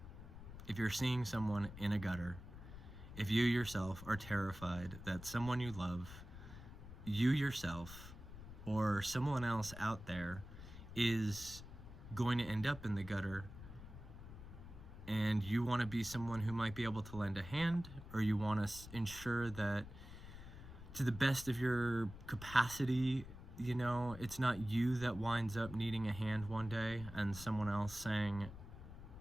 if you're seeing someone in a gutter, if you yourself are terrified that someone you love, you yourself, or someone else out there is going to end up in the gutter, and you want to be someone who might be able to lend a hand, or you want to ensure that to the best of your capacity, you know, it's not you that winds up needing a hand one day and someone else saying,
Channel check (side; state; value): left; noise; rumble, 13 dB below the sound